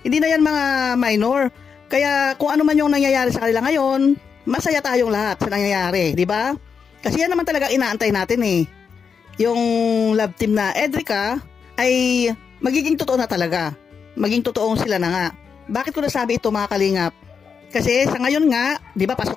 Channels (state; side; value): quieter; right; 6.2 dB